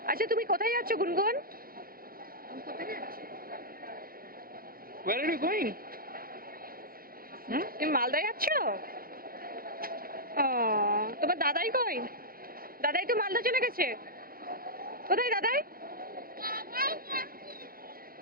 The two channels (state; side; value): late; left; 0.42 ms